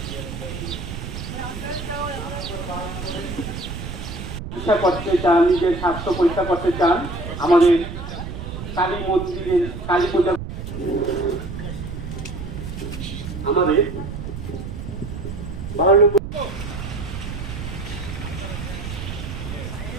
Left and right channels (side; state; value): right; noise; rumble, 7 dB below the sound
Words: পরীক্ষা করতে চান, নিজের স্বাস্থ্য পরীক্ষা করতে চান, আমাদের কালী মন্দিরের কালী পূজা আমাদের